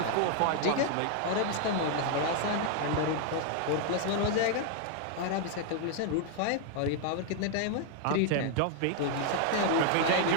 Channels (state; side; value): different; both; correlation 0.00